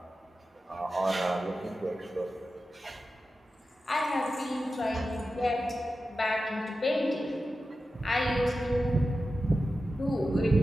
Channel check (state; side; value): normal; both; correlation 0.92